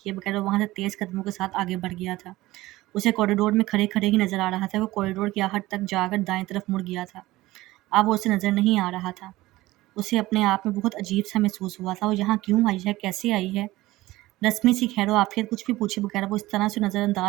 بغیر وہ وہاں سے تیز قدموں کے ساتھ آگے بڑھ گیا تھا. اسے کوریڈور میں کھڑے ہی نظر آ رہا تھا. وہ کوریڈور کی آخر تک جا کر دائیں طرف مڑ گیا تھا. اب وہ اسے نظر نہیں آ رہا تھا. اسے اپنے آپ میں بہت عجیب سا محسوس ہوا تھا. وہ یہاں کیوں آئی ہے؟ کیسے آئی ہے؟ رسمی سی خیر و عافیت کچھ بھی پوچھے بغیر وہ اس طرح سے نظر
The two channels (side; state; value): left; quieter; 18.1 dB